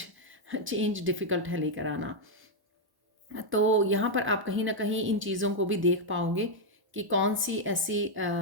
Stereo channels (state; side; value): late; left; 1.1 ms